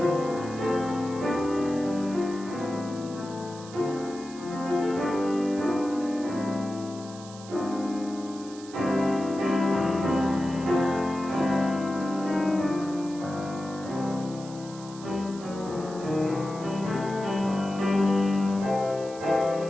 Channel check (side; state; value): right; noise; hiss, 18 dB below the sound